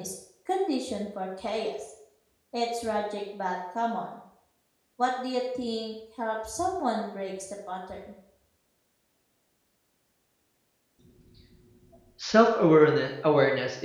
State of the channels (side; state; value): both; identical; correlation 1.00